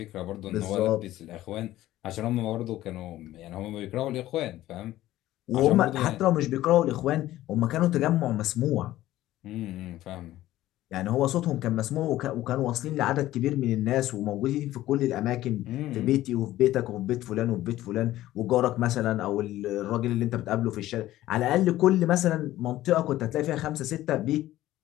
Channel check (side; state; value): right; quieter; 14.9 dB